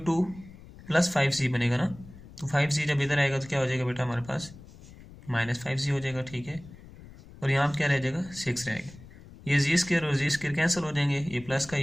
2 + 5g बनेगा ना, तो 5g जब इधर आएगा तो क्या हो जाएगा बेटा हमारे पास -5g हो जाएगा, ठीक है। और यहाँ पर क्या रह जाएगा 6 रहेगा, ये जी स्क्वायर और जी स्क्वायर कैंसिल हो जाएंगे, ये प्लस का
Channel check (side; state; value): left; noise; rumble, 19 dB below the sound